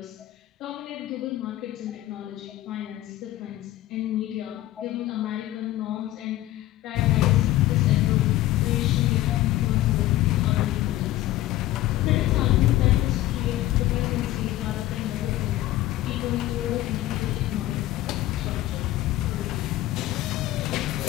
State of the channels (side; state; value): right; quieter; 15.2 dB